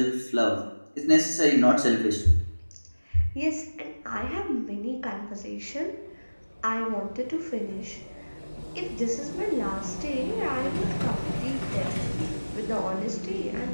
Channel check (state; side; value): inverted; both; correlation -1.00